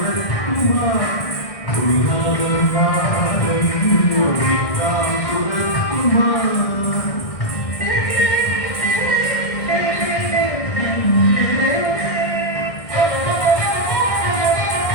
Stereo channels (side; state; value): right; late; 1.6 ms